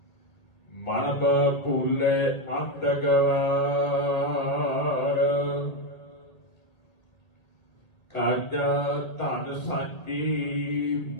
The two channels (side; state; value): right; late; 1.6 ms